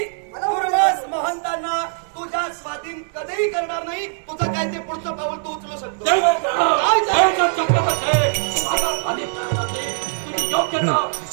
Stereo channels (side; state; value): left; silent; digital silence